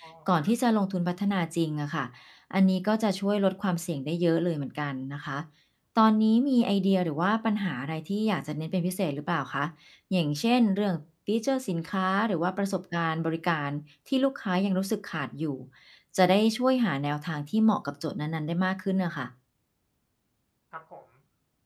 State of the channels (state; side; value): identical; both; correlation 1.00